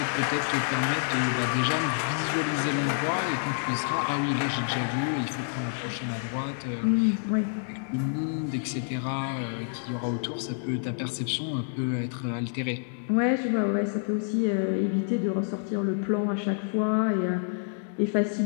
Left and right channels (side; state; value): right; silent; digital silence